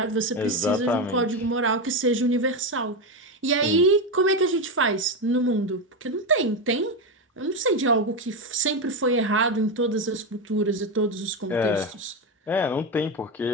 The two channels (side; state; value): both; normal; correlation 0.12